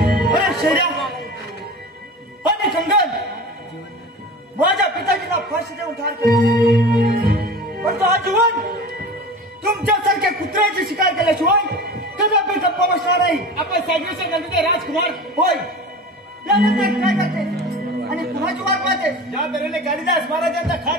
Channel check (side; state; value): both; normal; correlation 0.34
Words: अरे शैर्या आणि कंगन माझ्या पिताजीला फाशी देऊन ठार केले पण तो आजीवन तुमच्यासारख्या कुत्र्याची शिकार केल्याशिवाय कदापि गप्पा बसणार नाही. आपण सागरीच्या नंदीचे राजकुमार होय यानंतर काय करते आणि कुणाची वाट पाहते. ज्या तऱ्हेने कालिदास महाराजांचा